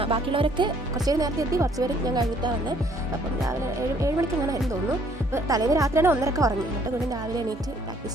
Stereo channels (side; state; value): both; normal; correlation 0.62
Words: ബാക്കിയുള്ളവരൊക്കെ കുറച്ച് പേര് നേരത്തെ എത്തി, കുറച്ച് പേര് ഞാൻ കഴിഞ്ഞിട്ടാണ് വന്നത്. അപ്പം രാവിലെ 7 മണിക്ക് അങ്ങനെ ആയിരുന്നു തോന്നുന്നു. അപ്പോൾ തലേന്ന് രാത്രിയാണ് 1:30 ഉറങ്ങി. എന്നിട്ട് വീണ്ടും രാവിലെ എണീറ്റ്